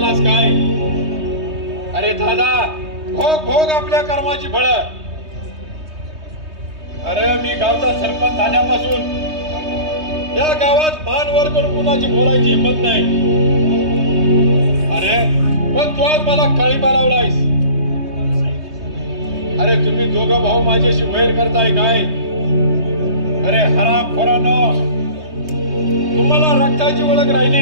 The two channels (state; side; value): late; left; 3.2 ms